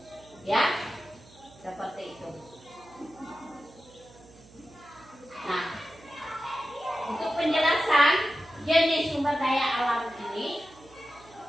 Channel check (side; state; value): right; noise; hum, 24 dB below the sound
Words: Ya, seperti itu. Nah, untuk penjelasan jenis sumber daya alam ini,